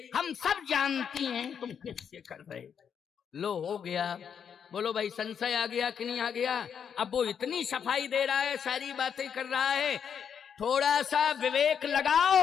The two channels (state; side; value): quieter; right; 7.6 dB